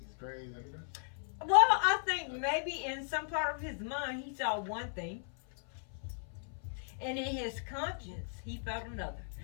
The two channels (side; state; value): right; silent; 54 dB below the other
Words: crazy. Well, I think maybe in some part of his mind he saw one thing, and in his conscience he felt another.